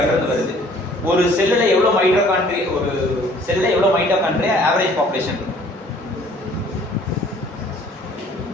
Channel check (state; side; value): normal; both; correlation 0.55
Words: இருந்து வருது. ஒரு செல்லுல எவ்வளவு மைட்டோகாண்ட்ரி, ஒரு செல்லுல எவ்வளவு மைட்டோகாண்ட்ரியா ஆவரேஜ் பாப்புலேஷன்